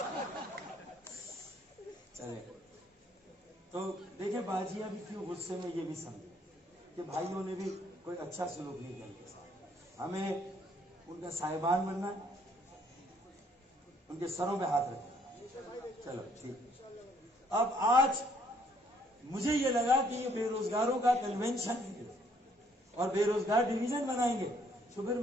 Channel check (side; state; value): both; normal; correlation 0.66